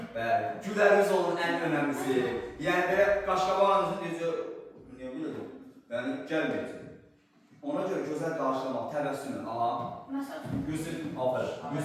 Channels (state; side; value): identical; both; correlation 1.00